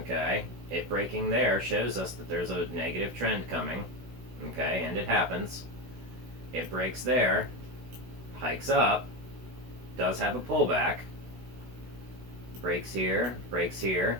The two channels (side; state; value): left; late; 16 ms